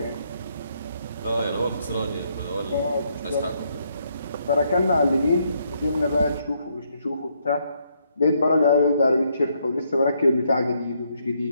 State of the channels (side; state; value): both; inverted; correlation -0.74